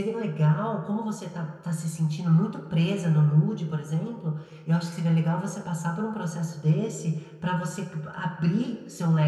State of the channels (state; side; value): identical; both; correlation 1.00